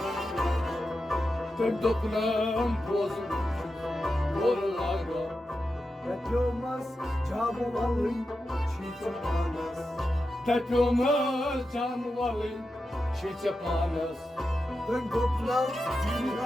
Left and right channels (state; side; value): normal; both; correlation 0.90